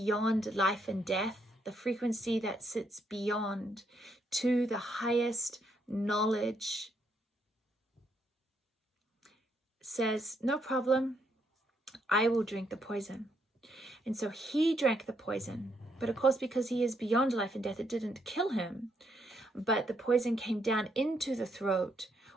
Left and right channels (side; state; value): both; normal; correlation 0.75